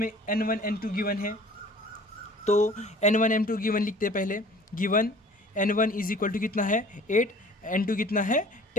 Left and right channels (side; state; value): both; normal; correlation 0.48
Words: n1 n2 गिवन है, तो n1 n2 गिवन लिखते हैं पहले। Given n1 is equal to कितना है 8, n2 कितना है